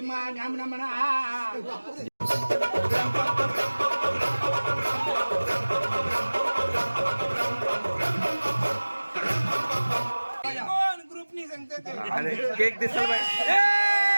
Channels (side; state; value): both; inverted; correlation -1.00